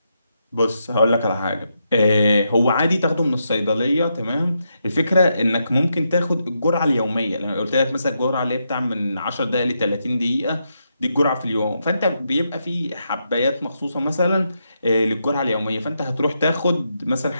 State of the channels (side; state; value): both; inverted; correlation -0.82